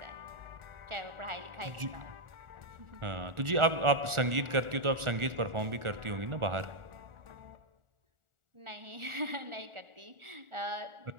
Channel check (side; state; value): left; late; 1.4 ms